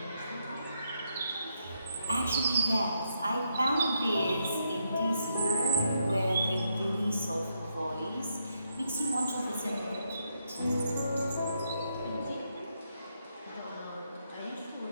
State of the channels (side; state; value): both; inverted; correlation -0.80